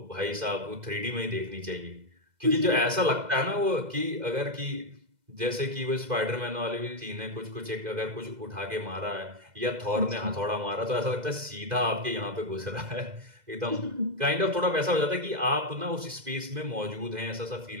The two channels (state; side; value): late; left; 2.0 ms